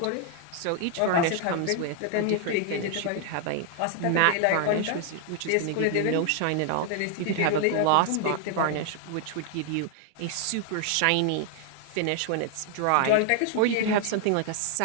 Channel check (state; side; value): different; both; correlation 0.00